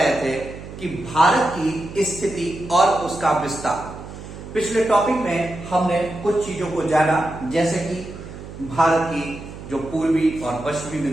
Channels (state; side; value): noise; right; hum, 13 dB below the sound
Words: थे कि भारत की स्थिति और उसका विस्तार, पिछले टॉपिक में हमने कुछ चीजों को जाना, जैसे कि भारत की जो पूर्वी और पश्चिमी